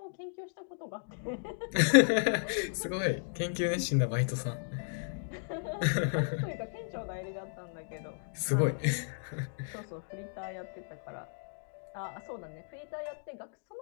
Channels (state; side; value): silent; right; digital silence